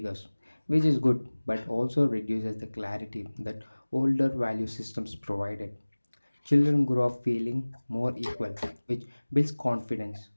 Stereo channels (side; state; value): both; inverted; correlation -1.00